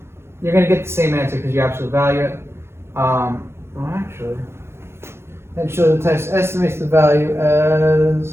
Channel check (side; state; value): left; late; 0.12 ms